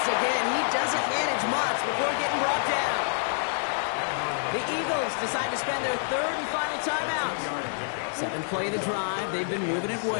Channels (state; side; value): silent; right; digital silence